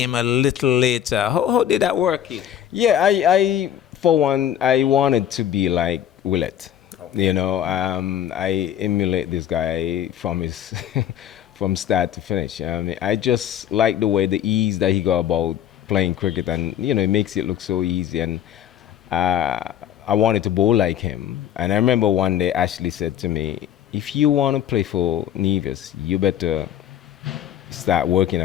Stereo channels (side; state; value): right; quieter; 10.4 dB